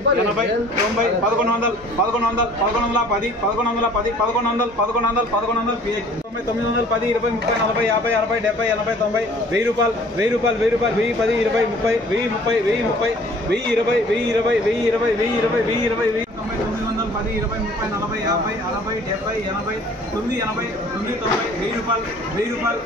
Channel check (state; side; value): normal; both; correlation 0.52